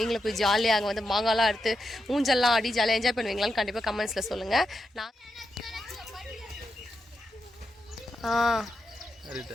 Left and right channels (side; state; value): both; normal; correlation 0.86